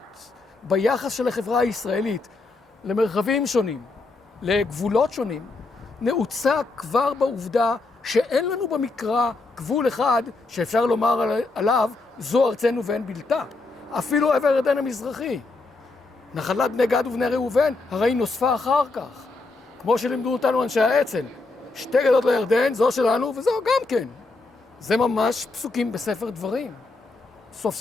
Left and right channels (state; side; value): quieter; right; 3.5 dB